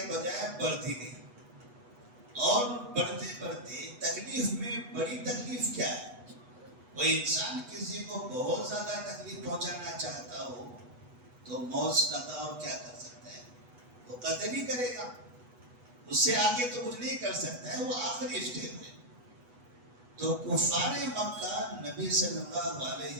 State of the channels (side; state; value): left; late; 8.1 ms